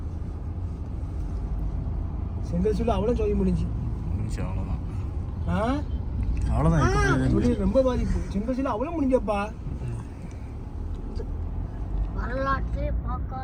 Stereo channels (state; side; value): identical; both; correlation 1.00